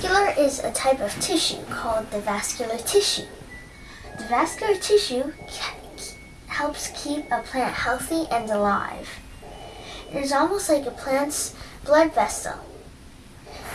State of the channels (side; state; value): both; identical; correlation 1.00